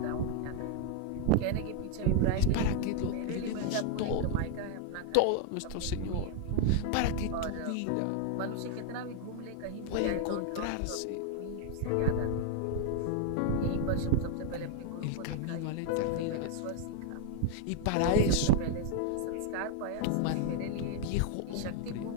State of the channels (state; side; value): different; both; correlation 0.00